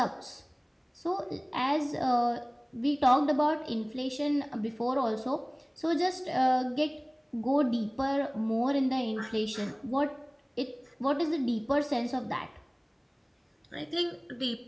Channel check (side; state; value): both; identical; correlation 1.00